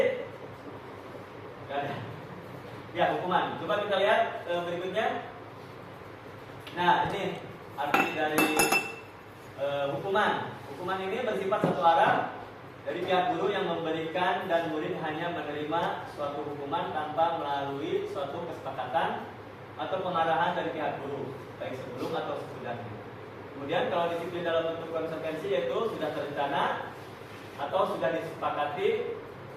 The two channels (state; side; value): identical; both; correlation 1.00